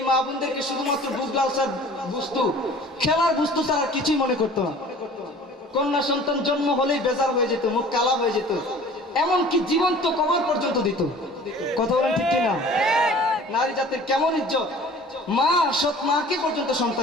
মা বোনদেরকে শুধুমাত্র বুগলালসার বস্তু, খেলার বস্তু ছাড়া আর কিছুই মনে করতো না। কন্যা সন্তান জন্ম হলেই বেজার হয়ে যেত, মুখ কালা হয়ে যেত, এমনকি জীবন্ত কবর পর্যন্ত দিত। কথা বলেন ঠিক কিনা? নারী জাতির কেমন ইজ্জত! মা, সৎ মাকে পর্যন্ত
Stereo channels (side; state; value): both; normal; correlation 0.46